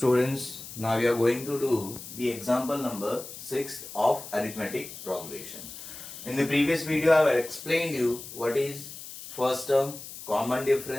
now we are going to do the example number 6 of arithmetic progression. In the previous video, I have explained you what is first term, common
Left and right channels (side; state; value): left; noise; hiss, 12 dB below the sound